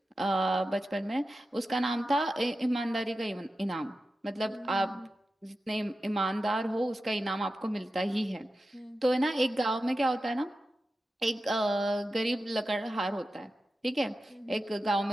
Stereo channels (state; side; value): normal; both; correlation 0.92